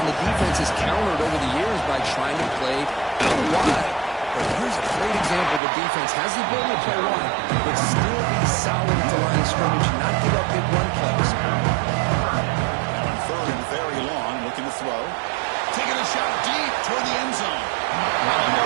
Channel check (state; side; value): drops out; left; at 5.6 s